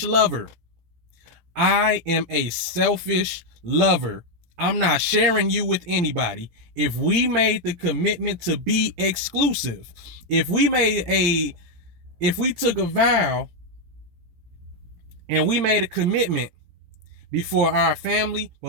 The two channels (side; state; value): left; late; 17 ms